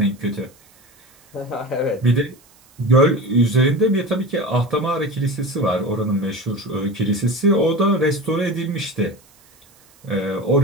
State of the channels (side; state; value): right; noise; hiss, 29 dB below the sound